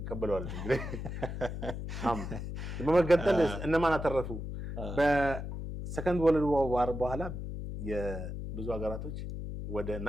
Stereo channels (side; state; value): left; noise; hum, 6 dB below the sound